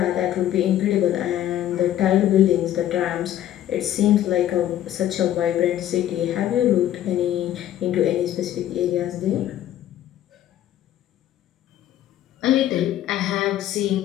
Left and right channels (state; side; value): quieter; right; 12.1 dB